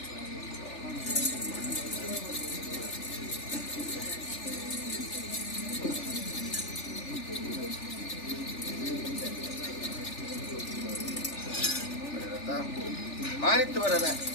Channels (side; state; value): right; late; 3.4 ms